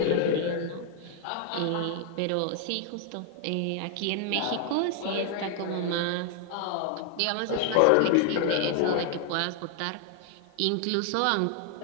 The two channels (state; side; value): different; both; correlation 0.00